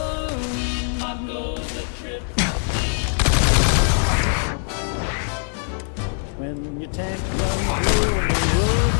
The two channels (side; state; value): right; silent; 63 dB below the other